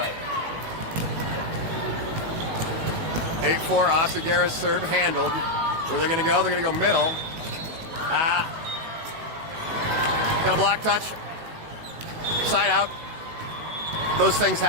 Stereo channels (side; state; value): left; late; 19 ms